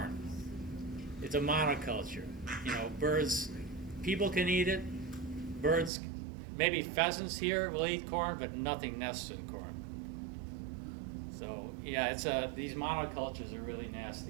It's a monoculture. You know, birds, people can eat it. Birds, maybe pheasants here will eat corn, but nothing nests in corn. So yeah, it's these monocultures are really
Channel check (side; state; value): left; drops out; at 5.9 s